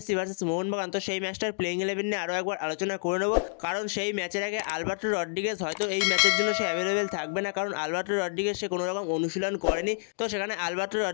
ভার্সেস মোহনবাগান, তো সেই ম্যাচটার প্লেইং 11 নিয়ে আরও একবার আলোচনা করে নেব। কারণ সেই ম্যাচের আগে আলবার্টো রড্রিগেজ হয়তো এই ম্যাচের জন্য সে অ্যাভেলেবেল থাকবে না, কারণ আলবার্টো রড্রিগেজ সে কোনো রকম অনুশীলন করেনি। তো সেখানে আলবার্টো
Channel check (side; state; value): right; silent; digital silence